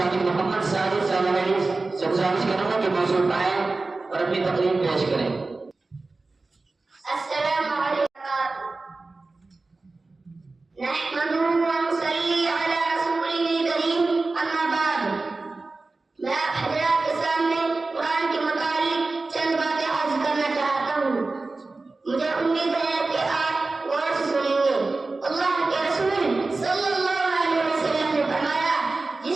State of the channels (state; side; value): quieter; left; 3.5 dB